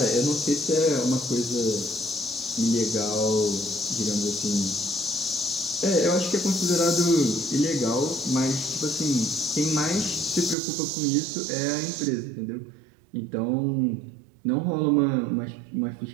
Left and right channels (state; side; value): drops out; left; at 10.6 s